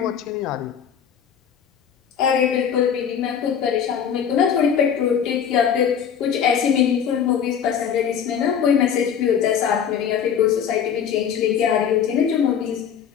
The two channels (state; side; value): quieter; right; 8.0 dB